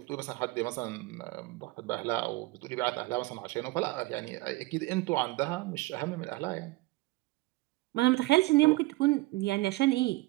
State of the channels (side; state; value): left; quieter; 20.8 dB